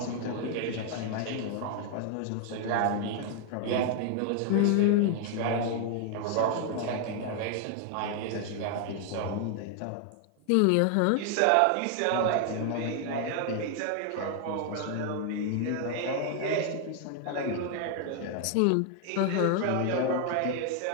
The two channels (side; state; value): both; different; correlation 0.00